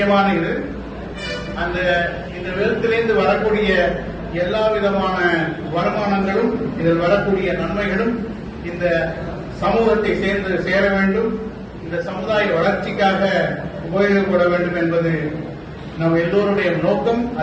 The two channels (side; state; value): both; identical; correlation 1.00